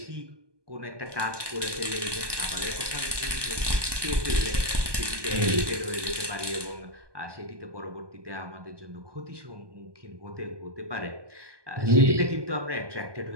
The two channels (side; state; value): left; late; 1.2 ms